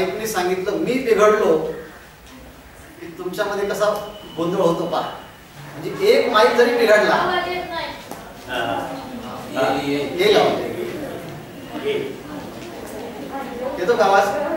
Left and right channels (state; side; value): identical; both; correlation 1.00